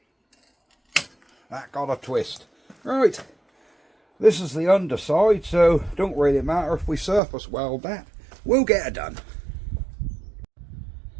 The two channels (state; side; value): drops out; left; at 7.2 s